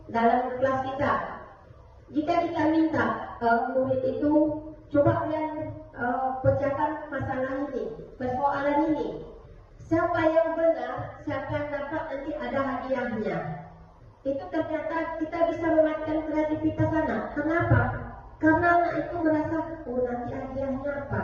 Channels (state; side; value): identical; both; correlation 1.00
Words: dalam kelas kita, jika kita minta murid itu coba kalian pecahkan masalah ini, persoalan ini, siapa yang benar, siapa yang dapat nanti ada hadiahnya. Itu ternyata kita bisa mematikan kreativitas anak. Kenapa? Karena anak itu merasa, oh nanti hadiahnya apa?